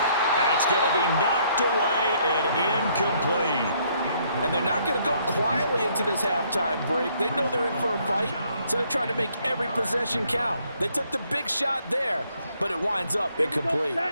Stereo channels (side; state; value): both; inverted; correlation -0.67